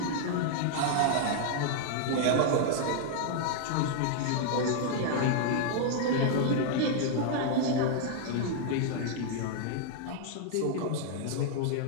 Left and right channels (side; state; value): both; different; correlation -0.01